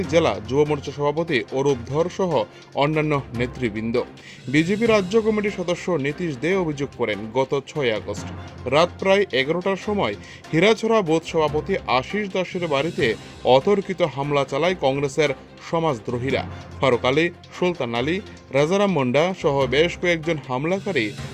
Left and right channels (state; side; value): identical; both; correlation 1.00